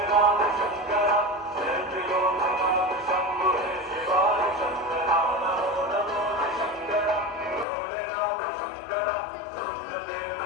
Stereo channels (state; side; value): drops out; right; at 7.7 s